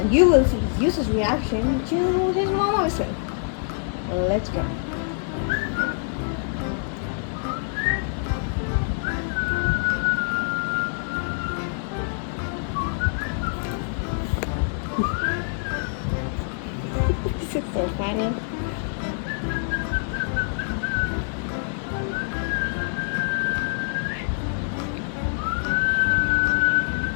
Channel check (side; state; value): right; silent; 62 dB below the other